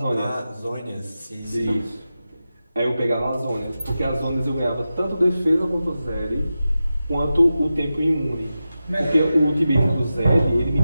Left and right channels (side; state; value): both; inverted; correlation -0.92